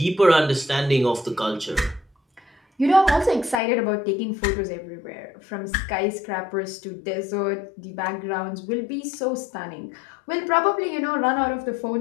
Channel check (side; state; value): right; drops out; at 3.6 s